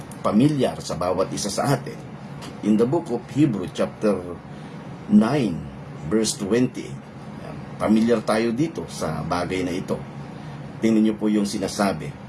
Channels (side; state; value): both; identical; correlation 1.00